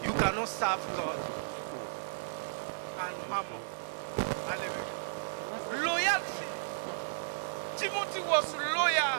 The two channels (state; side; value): silent; left; digital silence